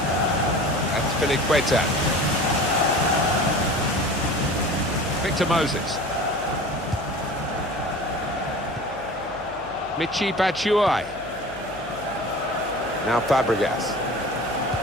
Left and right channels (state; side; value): noise; left; hum, 20 dB below the sound